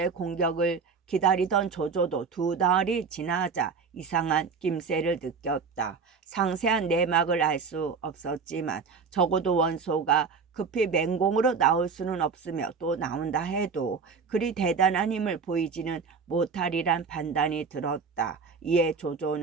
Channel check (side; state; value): left; quieter; 5.3 dB